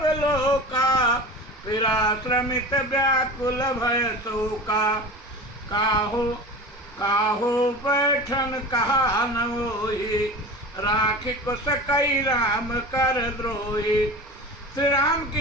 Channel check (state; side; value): normal; both; correlation 0.33